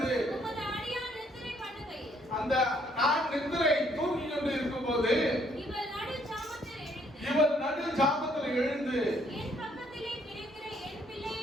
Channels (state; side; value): normal; both; correlation 0.67